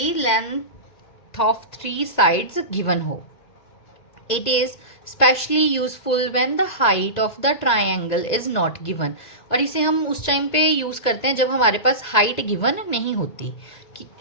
length of three sides given हो. It is specially useful when the height of the triangle is not given. और इसे हम उस टाइम पे यूज करते हैं जब हमारे पास हाइट गिवन नहीं होती,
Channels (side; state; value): right; late; 1.9 ms